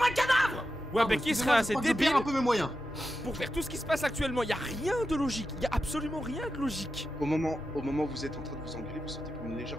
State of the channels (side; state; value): both; normal; correlation 0.90